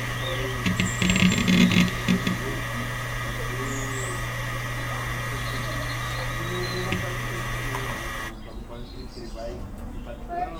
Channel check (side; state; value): both; identical; correlation 1.00